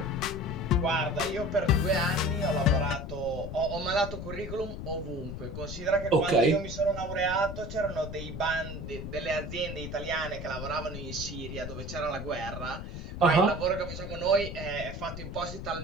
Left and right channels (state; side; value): noise; left; rumble, 8 dB below the sound